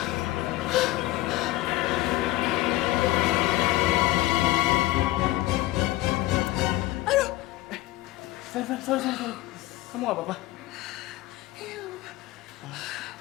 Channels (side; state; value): right; quieter; 17.6 dB